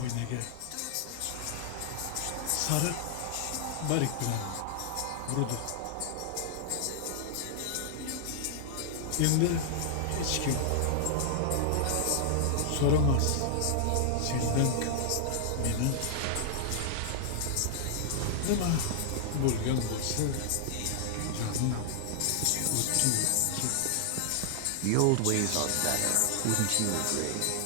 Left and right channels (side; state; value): both; different; correlation 0.00